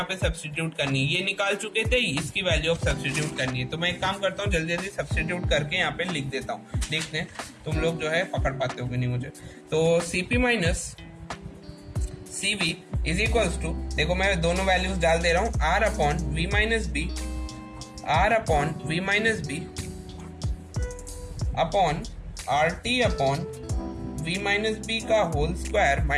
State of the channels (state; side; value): identical; both; correlation 1.00